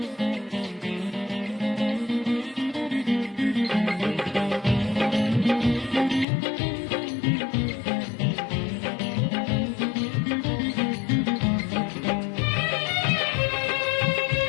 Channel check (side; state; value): right; drops out; at 6.2 s